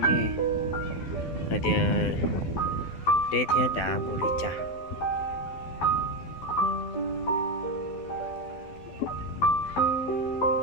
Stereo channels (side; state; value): right; late; 12 ms